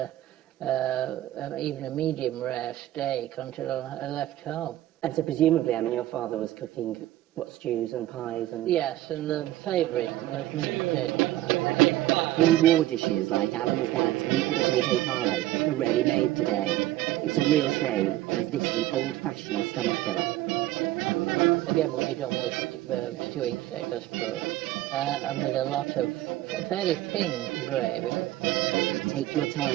even a medium rare steak until I left home. And so presumably, your father was cooking, stews and pies and... Yes, and the favourite was meat and potato pie. Pre-war dishes like Alan's dad's meat and potato pie are rarely made today. It's a real shame, as this is an old-fashioned stomach filler. Again, we'll be done with stewing steak, I suppose, and with a lot of fairly thin gravy. Take your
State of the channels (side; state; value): left; quieter; 15.2 dB